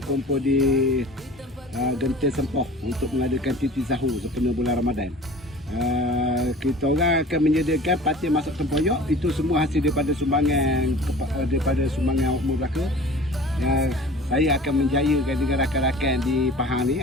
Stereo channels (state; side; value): normal; both; correlation 0.43